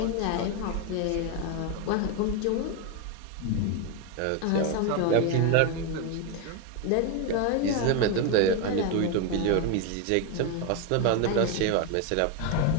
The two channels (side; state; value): both; different; correlation 0.02